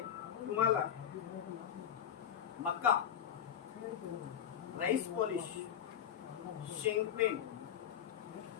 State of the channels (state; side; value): quieter; right; 9.2 dB